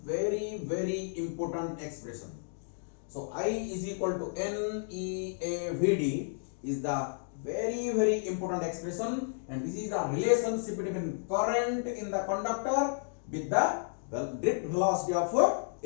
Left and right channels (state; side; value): silent; right; digital silence